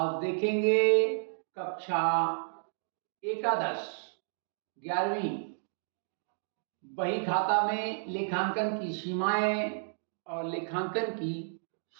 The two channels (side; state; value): left; silent; digital silence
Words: देखेंगे कक्षा एकादश 11वीं बही खाता में लेखांकन की सीमाएं और लेखांकन की